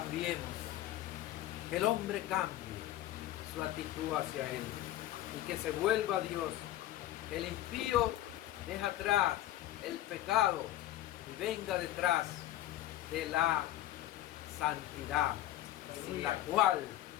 que el hombre cambie su actitud hacia Él y que se vuelva a Dios. El impío deja atrás el pecado y venga detrás de la santidad, sin la cual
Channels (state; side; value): quieter; right; 14.3 dB